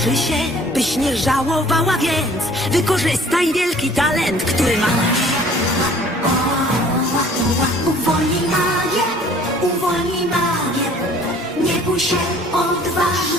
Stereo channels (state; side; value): normal; both; correlation 0.53